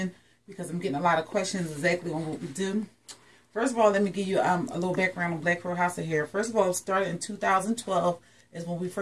because I'm getting a lot of questions exactly on what we do. First of all, let me give you a little background on Black Crow House of Hair. First of all, it started in 2012 is when we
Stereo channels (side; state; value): both; identical; correlation 1.00